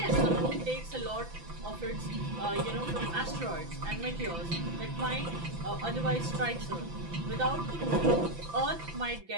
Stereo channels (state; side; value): late; left; 5.9 ms